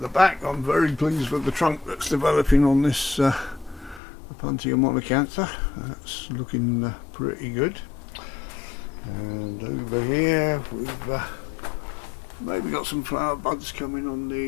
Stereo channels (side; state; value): right; drops out; at 4.0 s